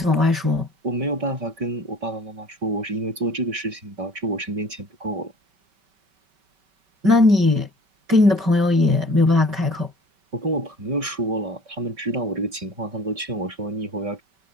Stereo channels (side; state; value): left; late; 5.2 ms